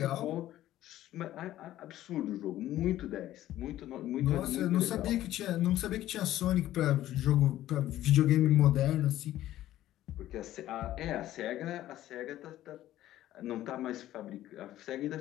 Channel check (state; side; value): quieter; right; 13.8 dB